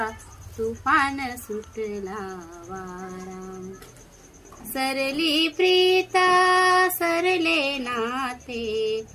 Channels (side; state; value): both; identical; correlation 1.00